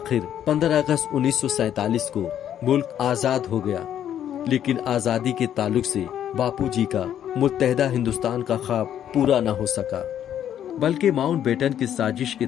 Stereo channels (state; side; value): quieter; right; 10.2 dB